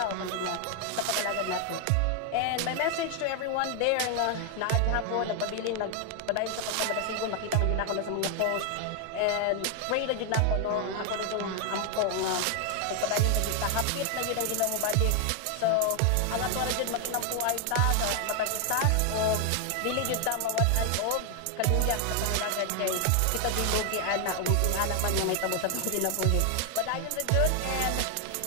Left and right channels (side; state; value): both; different; correlation 0.00